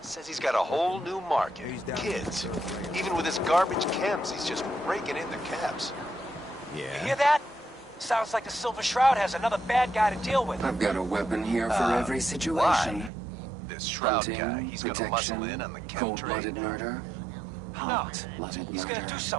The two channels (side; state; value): left; drops out; at 13.1 s